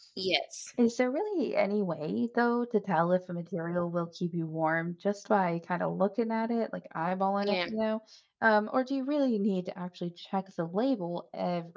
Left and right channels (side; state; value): both; identical; correlation 1.00